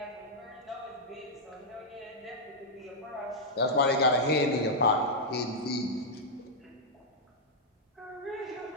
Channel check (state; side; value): normal; both; correlation -0.06